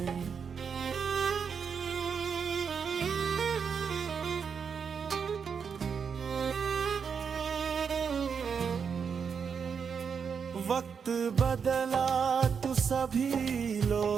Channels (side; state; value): left; quieter; 6.4 dB